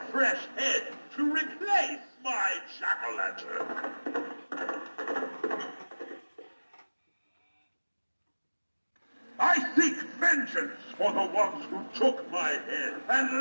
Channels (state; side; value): inverted; both; correlation -1.00